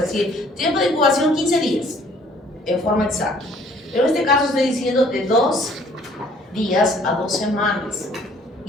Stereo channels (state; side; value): normal; both; correlation 0.58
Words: decir, tiempo de incubación 15 días, en forma exacta. Pero en este caso estoy diciendo de 2 días a 2 semanas.